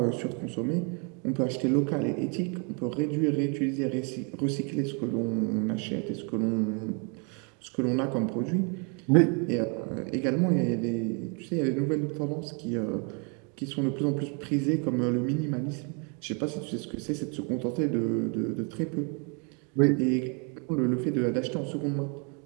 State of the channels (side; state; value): left; quieter; 35.8 dB